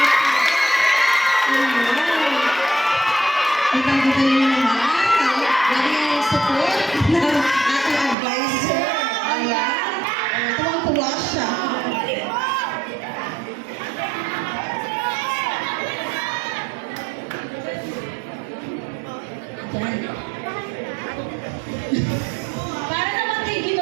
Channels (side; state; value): left; drops out; at 8.2 s